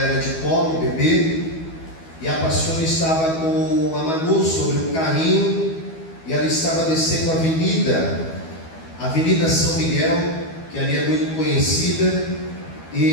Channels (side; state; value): right; late; 12 ms